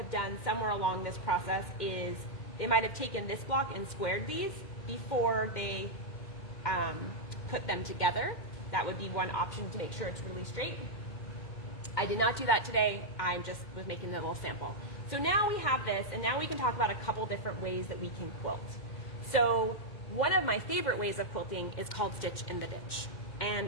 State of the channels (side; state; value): right; late; 2.1 ms